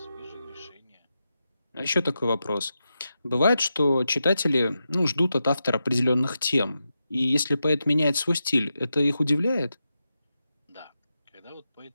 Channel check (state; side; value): inverted; both; correlation -0.89